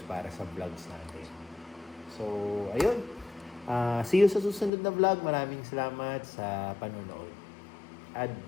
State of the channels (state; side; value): drops out; right; at 4.7 s